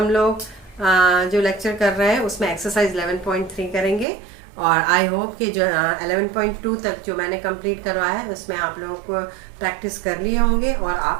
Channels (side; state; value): left; drops out; at 4.0 s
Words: लोग जो लेक्चर कर रहे हैं उसमें एक्सरसाइज 11.3 करेंगे और आई होप कि जो 11.2 तक जो मैंने कंप्लीट करवाया है उसमें आप लोगों को प्रैक्टिस कर लिए होंगे और